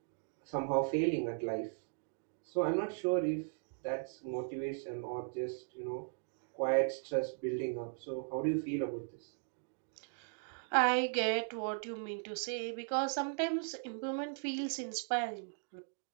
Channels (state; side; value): silent; left; digital silence